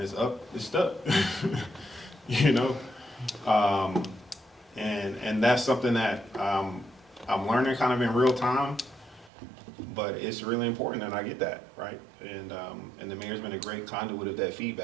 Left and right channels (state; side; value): drops out; left; at 9.3 s